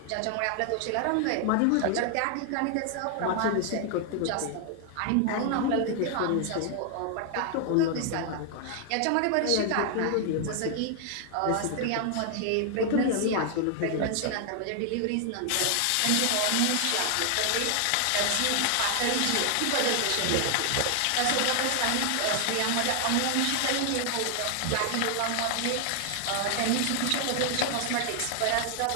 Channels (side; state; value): both; different; correlation 0.00